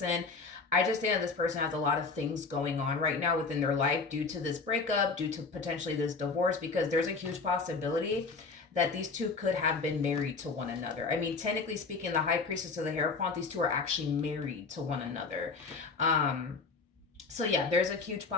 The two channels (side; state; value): right; quieter; 4.4 dB